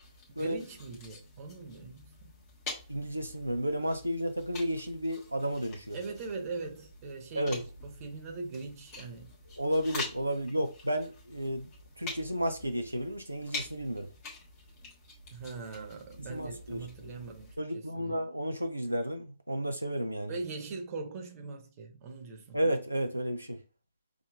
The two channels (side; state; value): both; inverted; correlation -0.82